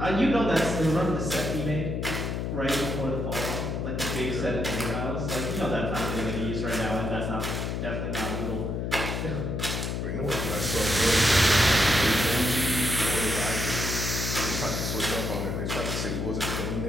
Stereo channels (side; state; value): left; noise; hum, 2 dB below the sound